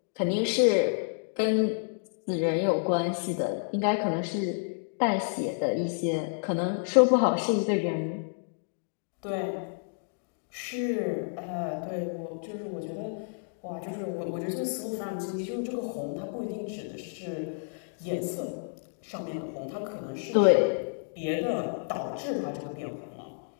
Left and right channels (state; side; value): silent; right; digital silence